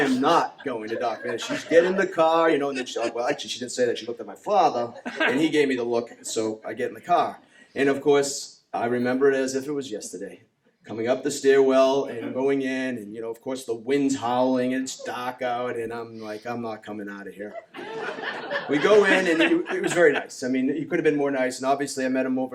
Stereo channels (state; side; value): identical; both; correlation 1.00